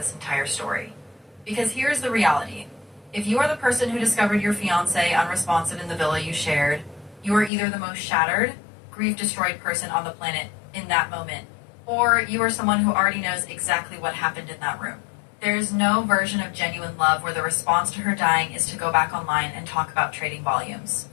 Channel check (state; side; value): drops out; right; at 7.5 s